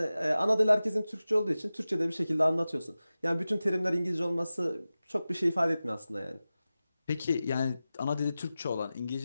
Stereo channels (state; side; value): inverted; both; correlation -0.95